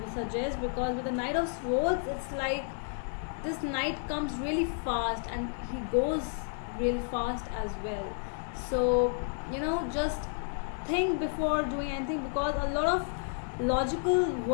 suggest, because with the Knight of Swords, it's like this knight comes really fast and he goes really fast as well. So you know, just think before doing anything, because a lot of logical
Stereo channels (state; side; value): silent; right; 57 dB below the other